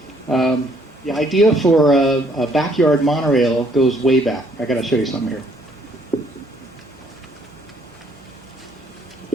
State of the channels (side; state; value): both; normal; correlation 0.65